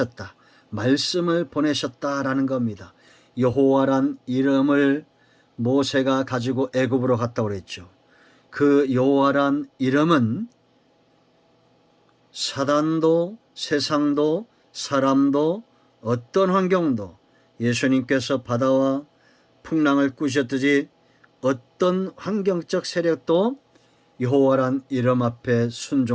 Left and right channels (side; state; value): both; identical; correlation 1.00